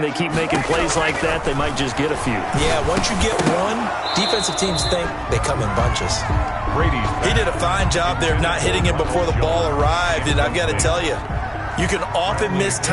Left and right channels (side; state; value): both; identical; correlation 1.00